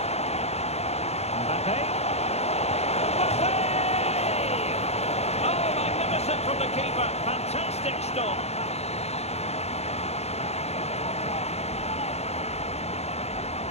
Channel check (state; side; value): late; right; 0.31 ms